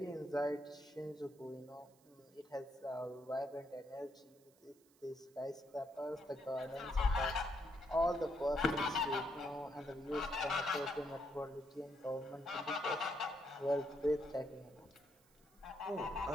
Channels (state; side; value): noise; right; hiss, 30 dB below the sound